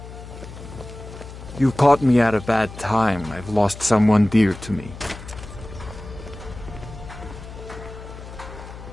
You caught me at a bad time. I've lost someone dear to me.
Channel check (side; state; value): left; noise; hum, 13 dB below the sound